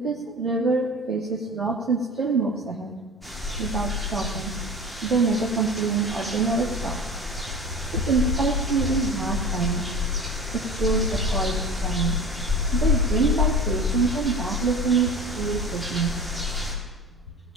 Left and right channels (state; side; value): normal; both; correlation 0.34